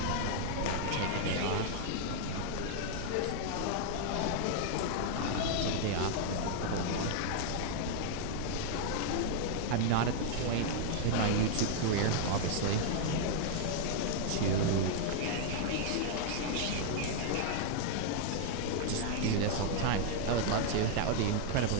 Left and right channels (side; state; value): both; different; correlation 0.00